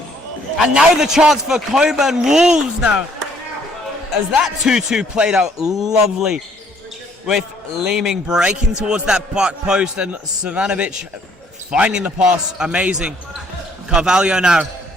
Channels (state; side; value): normal; both; correlation 0.64